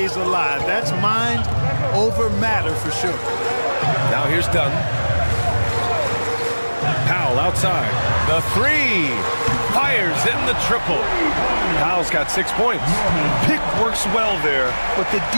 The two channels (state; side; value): inverted; both; correlation -1.00